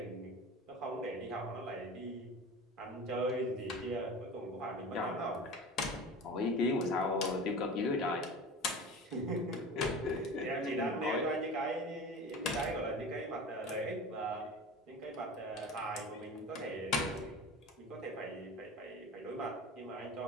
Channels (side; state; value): both; normal; correlation 0.34